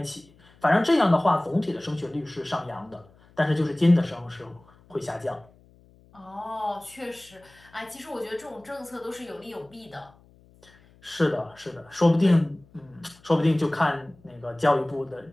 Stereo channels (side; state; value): left; noise; hum, 28 dB below the sound